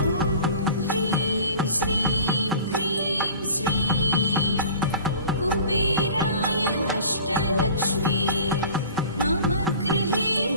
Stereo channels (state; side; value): inverted; both; correlation -0.44